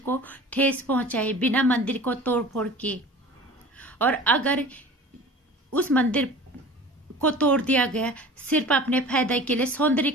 ठेस पहुंचाए, बिना मंदिर को तोड़ फोड़ के। और अगर उस मंदिर को तोड़ दिया गया सिर्फ अपने फायदे के लिए,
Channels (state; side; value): normal; both; correlation 0.40